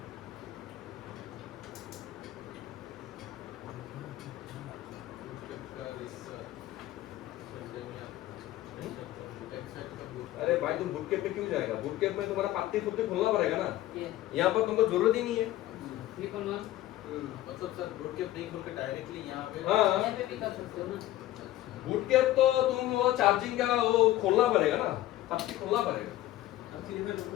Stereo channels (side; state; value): right; quieter; 15.0 dB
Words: अरे भाई तुम बुट कैप पे क्यों जाएगा बुट कैप में तुम्हारा पत्ते खुद खोलना पड़ेगा ना यहाँ पर तुमको जरूरत ही नहीं है मतलब सर बुट कैप नहीं खोल के डायरेक्टली यहाँ पे हाँ यहाँ पे भी कर सकते हो ना बुट कैप तो तुम वो चार्जिंग का वो खोलना पड़ेगा ना पत्ती खोलना पड़ेगा